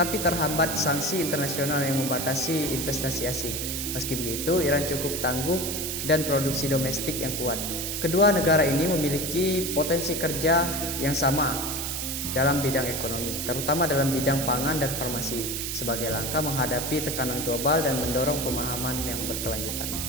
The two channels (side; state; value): right; noise; hiss, 3 dB below the sound